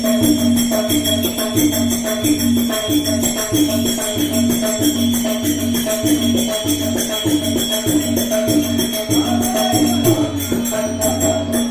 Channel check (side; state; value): left; noise; hum, 29 dB below the sound